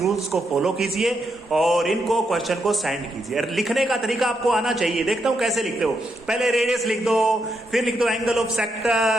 को फॉलो कीजिए और इनको क्वेश्चन को सेंड कीजिए। लिखने का तरीका आपको आना चाहिए, देखता हूं कैसे लिखते हो। पहले रेडियस लिख दो, फिर लिख दो एंगल ऑफ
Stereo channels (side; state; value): both; normal; correlation 0.81